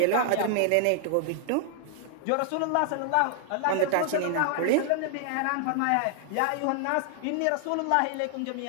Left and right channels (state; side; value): different; both; correlation 0.00